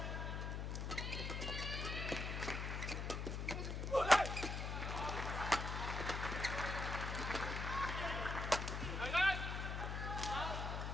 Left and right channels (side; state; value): left; noise; hum, 2 dB below the sound